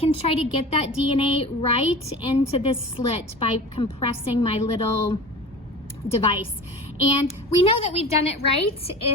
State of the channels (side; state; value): both; normal; correlation 0.36